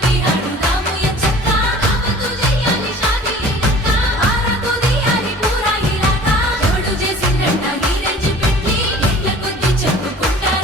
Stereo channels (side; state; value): both; normal; correlation 0.46